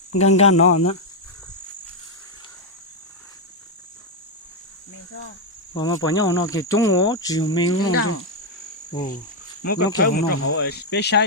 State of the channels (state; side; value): normal; both; correlation 0.01